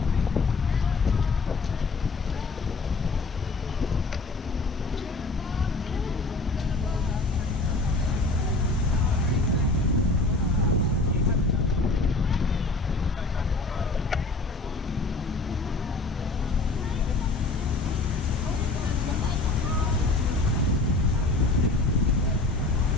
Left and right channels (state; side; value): quieter; right; 3.5 dB